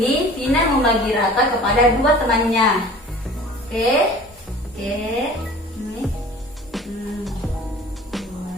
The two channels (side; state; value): both; normal; correlation 0.44